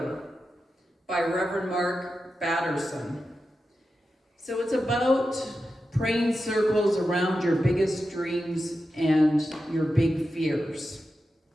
by Reverend Mark Batterson. So it's about praying circles around your biggest dreams and your big fears.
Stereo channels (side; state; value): both; normal; correlation 0.90